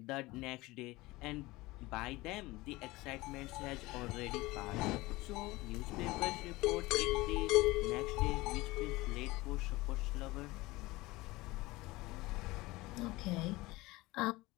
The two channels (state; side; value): quieter; right; 20.6 dB